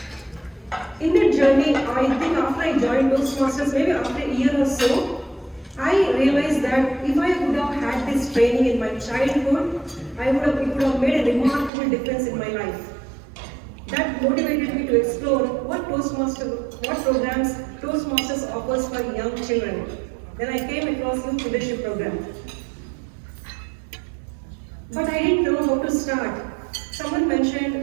In that journey, I think after I joined Toastmasters, maybe after a year or so, I realized that if I would have had this training in my childhood, it would have made a remarkable difference in my life. That motivated me to explore what programs Toastmasters offers for young children. Then I came across Youth Leadership Program. But I didn't know how to start. Someone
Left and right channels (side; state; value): left; drops out; at 11.7 s